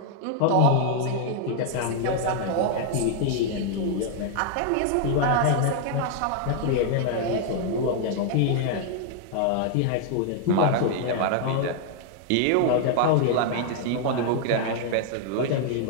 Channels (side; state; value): both; different; correlation 0.00